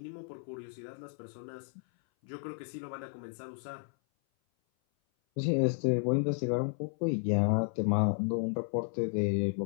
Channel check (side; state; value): right; silent; 56 dB below the other